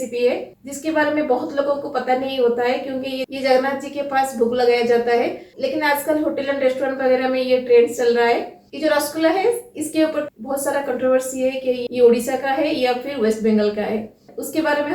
है जिसके बारे में बहुत लोगों को पता नहीं होता है, क्योंकि ये जगन्नाथ जी के पास भोग लगाया जाता है। लेकिन आजकल होटल एंड रेस्टोरेंट वगैरह में ये ट्रेंड चल रहा है। ये जो रसगुल्ला है, इसके ऊपर बहुत सारा कंट्रोवर्सी है कि ये उड़ीसा का है या फिर वेस्ट बंगाल का है। उसके बारे में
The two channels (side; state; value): both; identical; correlation 1.00